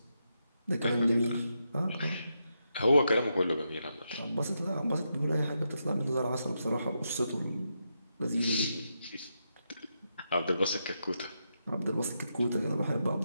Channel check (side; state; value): both; inverted; correlation -0.84